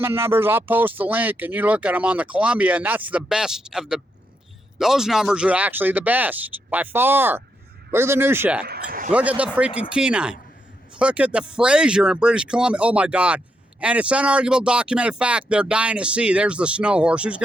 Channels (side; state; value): both; normal; correlation 0.81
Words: numbers, I'll post the link and you look at them on the Columbia, and that's the best of the, those numbers are actually the best by far. Look at the New Shack. Look at the freaking Kenai. Look at the Fraser in British Columbia. Oh my God. And it's unarguable documented fact they're dying at sea. There's the snow horse. Who's